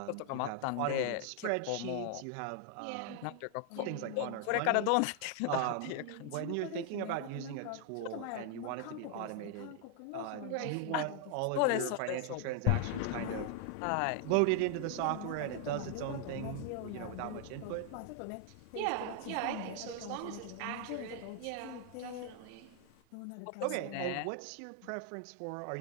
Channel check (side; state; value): both; different; correlation 0.00